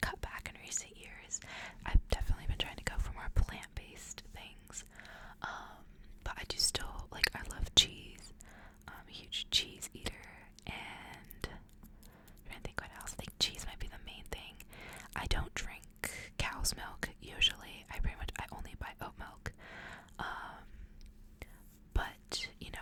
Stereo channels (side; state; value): both; identical; correlation 1.00